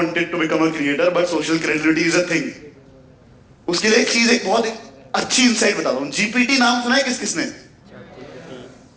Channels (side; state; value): both; identical; correlation 1.00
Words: to become a creator, but social credibility is a thing. उसके लिए एक बहुत अच्छी इंसाइट बताता हूँ। जीपीटी नाम सुना है किसने?